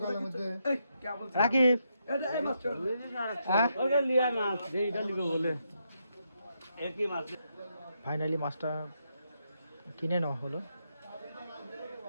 রাকিব ফাইনালি মাছটা কিনে নেওয়া হলো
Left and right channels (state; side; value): inverted; both; correlation -0.80